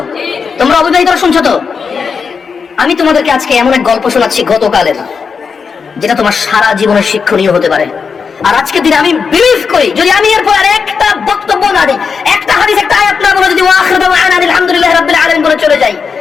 তোমরা অবিবাহিতরা শুনছো তো? আমি তোমাদেরকে আজকে এমন এক গল্প শোনাচ্ছি গতকালের, যেটা তোমার সারা জীবনের শিক্ষণীয় হতে পারে। আর আজকের দিনে আমি বিলিভ করি, যদি আমি এরপর আর একটা বক্তব্য না দিই, একটা হাদিস, একটা আয়াত না বলে, যদি ওয়াখির দাওয়ানা আলহামদুলিল্লাহি রাব্বিল আলামিন বলে চলে যাই,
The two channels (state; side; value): quieter; right; 5.7 dB